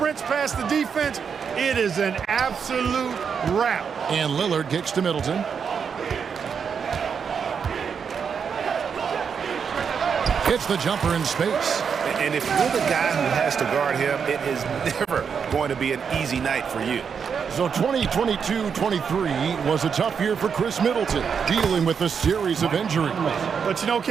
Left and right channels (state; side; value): quieter; left; 6.6 dB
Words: past the defense, it is an absolute wrap. And Lillard kicks to Middleton. Hits the jumper in space. And if you're the guy who has to guard him, it is never going to be an easy night for you. So 2022-23 was a tough year for Chris Middleton, dealing with a series of injuries. But you know,